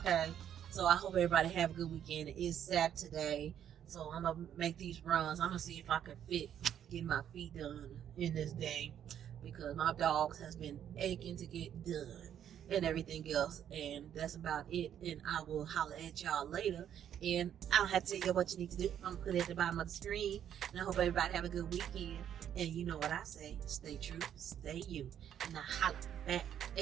So, I hope everybody have a good weekend. It is Saturday, so I'm gonna make these runs. I'm gonna see if I can fit getting my feet done in this day, because my dogs has been aching to get done. and everything else. And that's about it. And I will holler at y'all later. And I don't have to tell you what you need to do. I'm gonna put it at the bottom of the screen. And I hope everybody have a good weekend. And you know what I say, stay true, stay you. And I holler back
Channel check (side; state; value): left; quieter; 9.7 dB